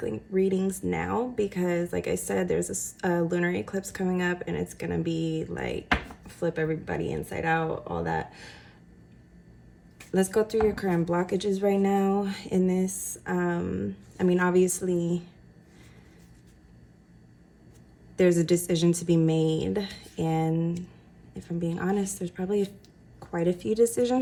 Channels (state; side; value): identical; both; correlation 1.00